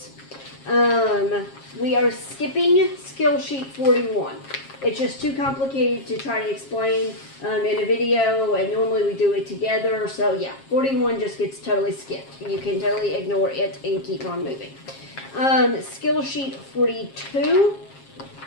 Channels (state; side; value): late; right; 7.4 ms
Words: We are skipping skill sheet 41. It's just too complicated to try to explain in a video, and normally we do it together. So yeah, 41 just gets totally skipped. You can totally ignore it and keep on moving. Skill sheet 42,